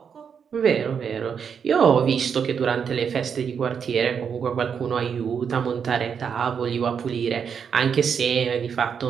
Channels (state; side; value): quieter; left; 7.0 dB